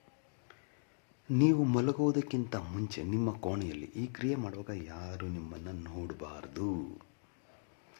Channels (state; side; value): silent; right; digital silence